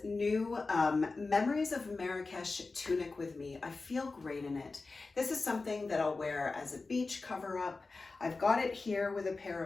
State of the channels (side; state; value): right; quieter; 3.8 dB